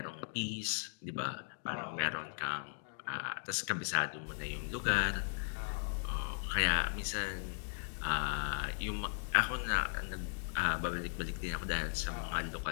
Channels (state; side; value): silent; right; digital silence